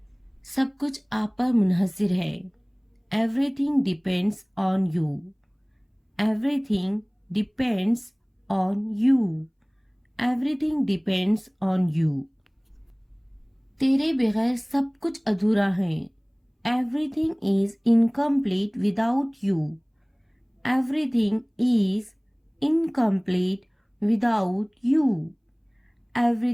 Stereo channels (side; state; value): both; identical; correlation 1.00